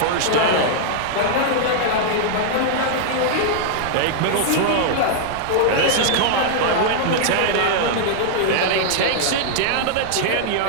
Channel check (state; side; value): different; both; correlation -0.01